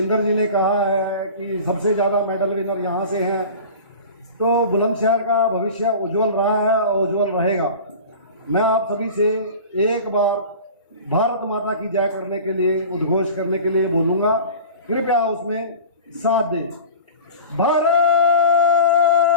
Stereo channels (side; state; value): both; inverted; correlation -0.37